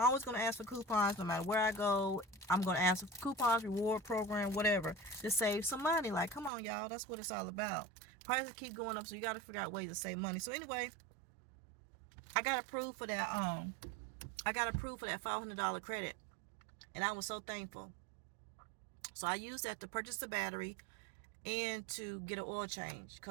going to ask for coupons no matter where I go. I'm going to ask for coupons, reward program, whatever, to save some money. Like, come on, y'all. That's what it's all about. Prices keep going up, so you got to figure out ways to save money. So anyway, I got approved for that. I got approved for that $500 credit, and I was so thankful. So I used that to purchase the battery and to get an oil change.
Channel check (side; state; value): left; drops out; at 6.5 s